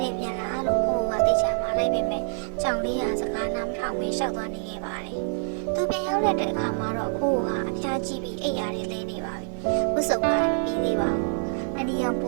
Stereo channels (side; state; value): left; silent; 60 dB below the other